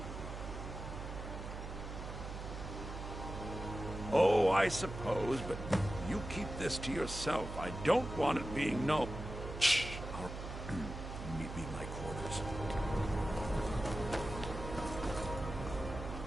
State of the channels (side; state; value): right; noise; hum, 8 dB below the sound